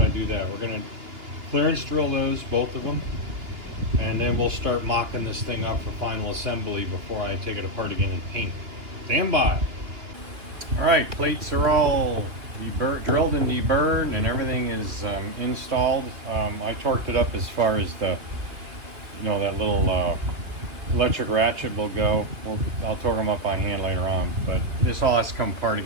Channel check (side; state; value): left; late; 2.8 ms